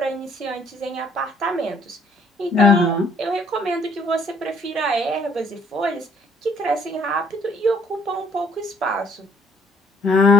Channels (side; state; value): both; normal; correlation 0.62